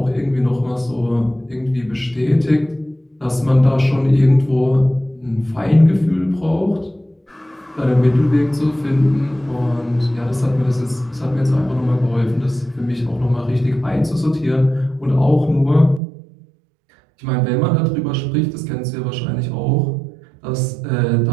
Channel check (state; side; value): drops out; left; at 16.0 s